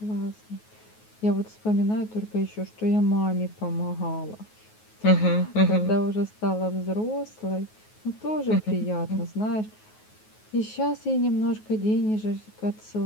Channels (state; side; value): late; right; 9.4 ms